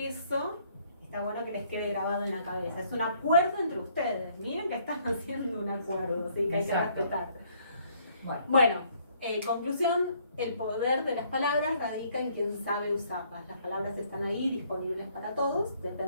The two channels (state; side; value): inverted; both; correlation -0.64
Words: está bueno que les quede grabado en la cabeza. Es un acuerdo entre ustedes. Miren que están haciendo un acuerdo, así que hay que Exacto. respetar. Bueno. Bueno, conclusión, el poder de las palabras radica en quien sabe usarlas. Las palabras están ahí disponibles para todos,